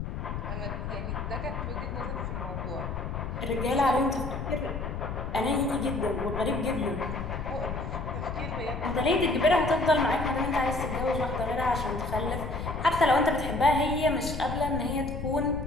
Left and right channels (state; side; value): noise; left; rumble, 5 dB below the sound